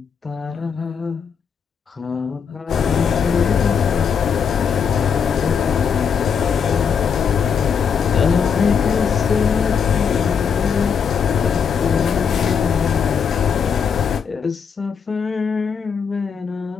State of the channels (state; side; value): quieter; right; 6.6 dB